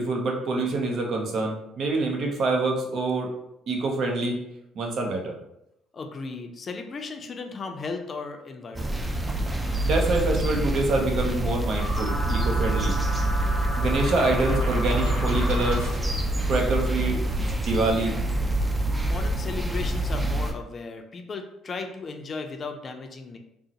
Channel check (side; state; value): both; normal; correlation 0.74